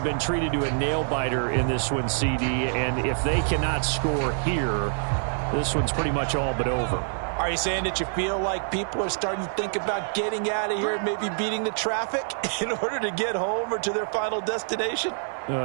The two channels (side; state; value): left; silent; digital silence